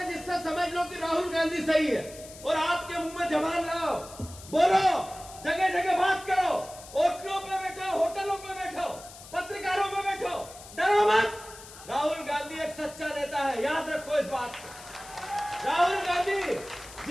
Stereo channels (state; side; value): noise; left; hiss, 17 dB below the sound